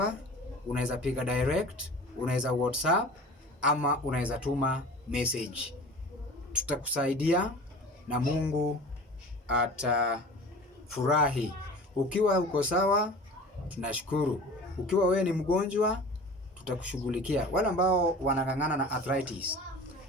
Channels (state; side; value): normal; both; correlation 0.40